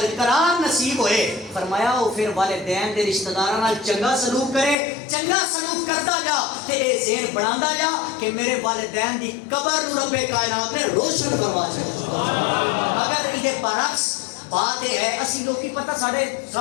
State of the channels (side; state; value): right; drops out; at 4.8 s